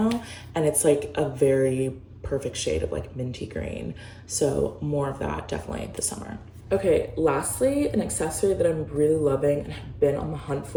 and it's like a very perfect shade of like minty green. So more of that definitely this summer. Okay, lastly, an accessory that I'm really loving and have been on the hunt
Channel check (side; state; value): both; identical; correlation 1.00